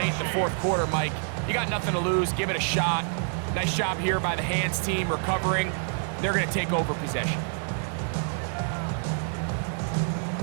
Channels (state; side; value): silent; left; 60 dB below the other